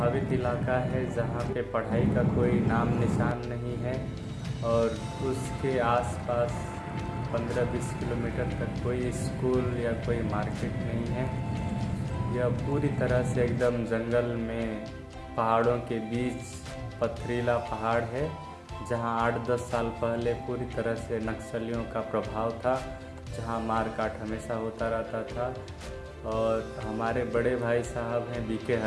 इलाका है, जहां पे पढ़ाई का कोई नाम निशान नहीं है और उसके आसपास 15-20 किलोमीटर तक कोई स्कूल या कोई मार्केट नहीं है। यह पूरी तरह से एकदम जंगल में पहाड़ों के बीच पथरीला पहाड़ है, जहां 8-10 साल पहले पूरी तरह से नक्सलियों का प्रभाव था, जहां मारकाट हमेशा होता रहता था। और हमारे बड़े भाई साहब हैं बीके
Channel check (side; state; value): both; identical; correlation 1.00